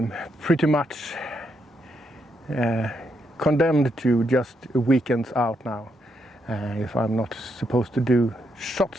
pretty much condemned to just weekends out now, if I'm not supposed to do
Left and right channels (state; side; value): normal; both; correlation 0.79